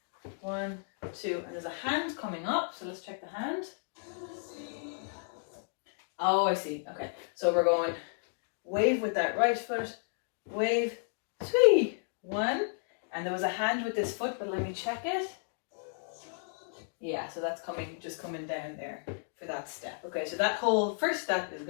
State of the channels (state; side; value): silent; right; digital silence